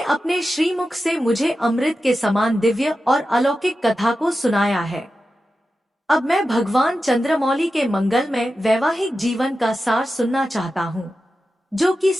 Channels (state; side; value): normal; both; correlation 0.92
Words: अपने श्रीमुख से मुझे अमृत के समान दिव्य और अलौकिक कथा को सुनाया है। अब मैं भगवान चंद्रमौली के मंगलमय वैवाहिक जीवन का सार सुनना चाहता हूँ, जो कि